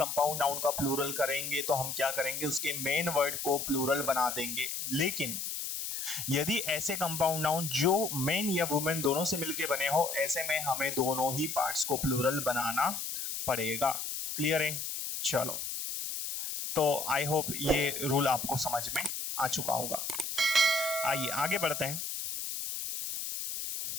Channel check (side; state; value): left; noise; hiss, 4 dB below the sound